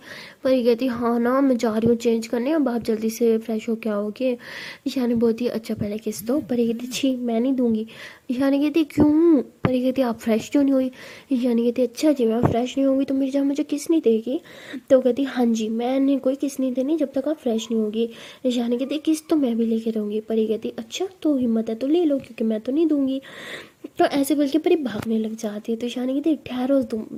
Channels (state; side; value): identical; both; correlation 1.00